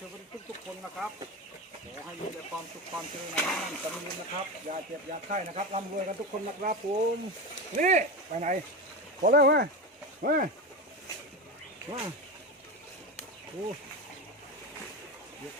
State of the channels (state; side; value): normal; both; correlation 0.21